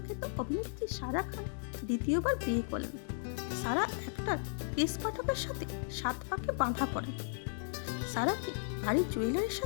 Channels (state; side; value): silent; right; digital silence